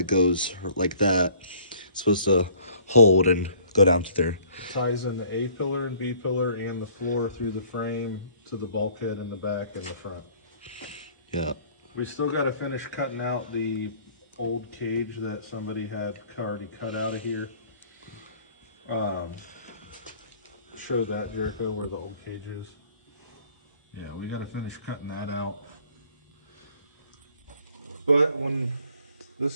goes like that. It's supposed to hold and go down to there. It ties in the A pillar and B pillar and the floor through the frame to the bulkhead in the back and the front. Yeah. We still got to finish cutting out the old cage that somebody had already cut out of here. Show that, Jericho, where the old cage is. Yeah, we gotta finish cutting that out. But when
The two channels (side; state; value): both; inverted; correlation -0.55